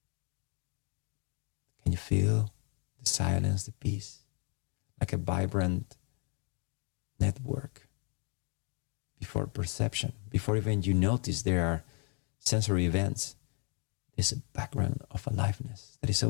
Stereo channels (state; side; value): quieter; right; 37.1 dB